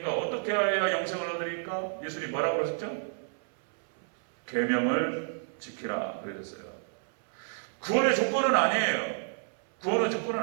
어떻게 해야 영생을 얻으리까? 예수님이 뭐라고 그러셨죠? 계명을 지키라 그러셨어요. 구원의 조건은 아니에요. 구원의 조건은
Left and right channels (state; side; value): silent; left; 58 dB below the other